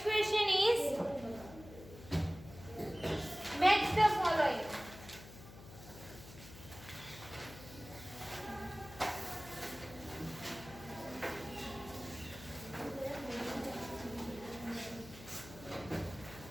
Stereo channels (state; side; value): noise; left; hum, 16 dB below the sound